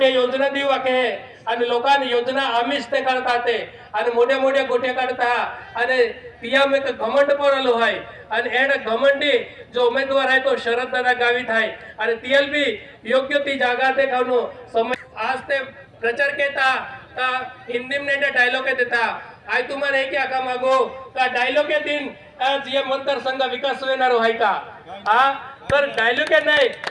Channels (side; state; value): both; identical; correlation 1.00